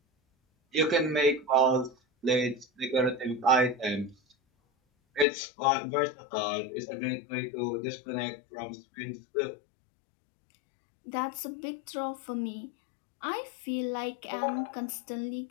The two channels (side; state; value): right; drops out; at 5.2 s